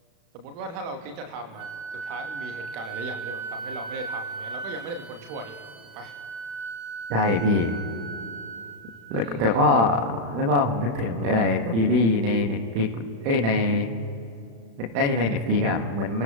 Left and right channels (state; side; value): late; left; 35 ms